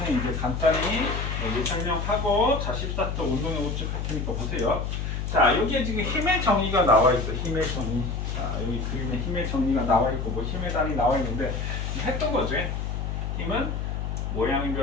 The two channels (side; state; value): left; noise; hum, 3 dB below the sound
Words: 이제 간단히 여기 설명하고 자, 14쪽 운동의 법칙 할 테니까 보세요. 자, 여기에 지금 힘의 정의가 나와 있어. 힘의 정의. 자, 여기 그림에 힘의 정의가 나와 있고 뭐 힘의 단이 나와 있는데 했던 거지. 힘은 모양이